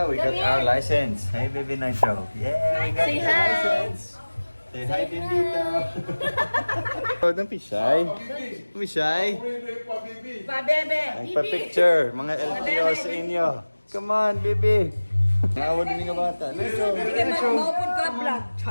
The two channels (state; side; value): inverted; both; correlation -1.00